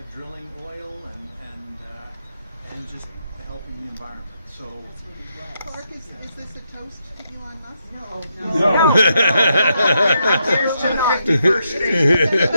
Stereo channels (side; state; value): both; inverted; correlation -0.80